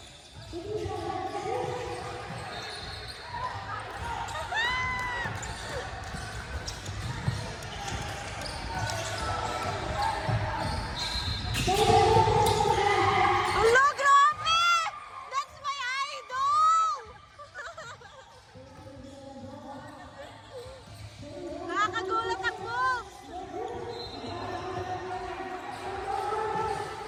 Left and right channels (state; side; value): identical; both; correlation 1.00